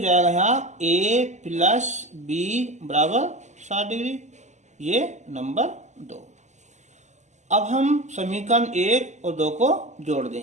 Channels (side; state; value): left; late; 0.34 ms